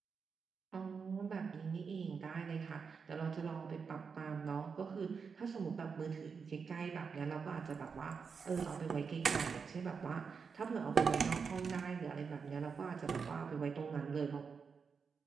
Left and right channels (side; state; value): left; quieter; 5.7 dB